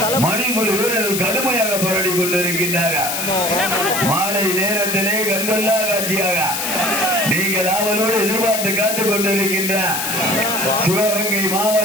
மணிக்குடி வீரர்கள் கடுமையாக போராடி கொண்டிருக்கின்றார்கள். மாலை நேரத்திலே கண்கொள்ளா காட்சியாக நீங்கள் ஆவலோடு எதிர்பார்த்து காத்துக் கொண்டிருக்கின்ற சிவகங்கை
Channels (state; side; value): noise; left; hiss, 2 dB below the sound